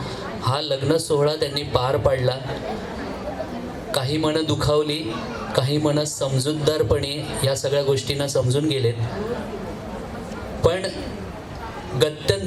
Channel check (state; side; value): identical; both; correlation 1.00